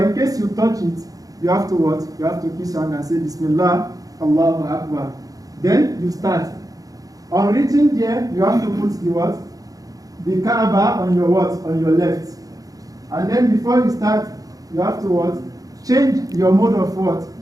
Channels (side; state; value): left; late; 0.17 ms